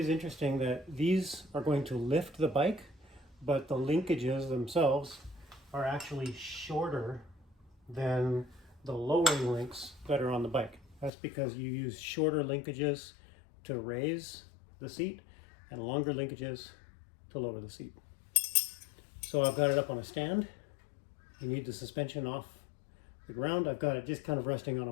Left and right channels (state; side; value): drops out; right; at 11.1 s